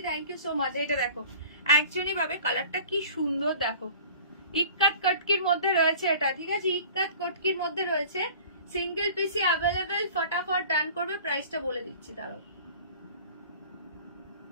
thank you so much. এটা দেখো, একজনই পাবে। কালারটা কি সুন্দর দেখো, ইক্কাত কটকির মধ্যে রয়েছে এটা, ঠিক আছে, ইক্কাত কটকির মধ্যে রয়েছে, সিঙ্গেল পিসি অ্যাভেলেবেল, ফটাফট ডান করবে। প্রাইসটা বলে দিচ্ছি, দাঁড়াও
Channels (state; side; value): inverted; both; correlation -0.44